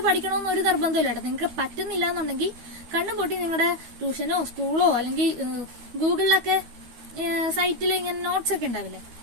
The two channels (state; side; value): late; left; 13 ms